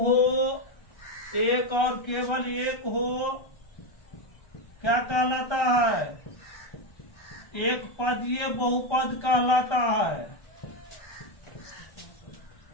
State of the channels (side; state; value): right; late; 1.3 ms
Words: एक और केवल एक हो, क्या कहलाता है? एक पदीय बहुपद कहलाता है।